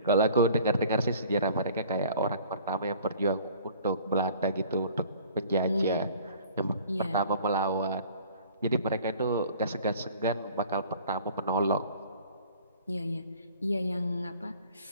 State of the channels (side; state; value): both; inverted; correlation -0.50